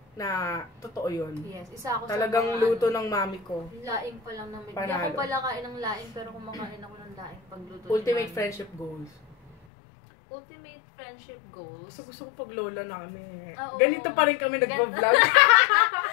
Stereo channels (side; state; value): right; drops out; at 9.6 s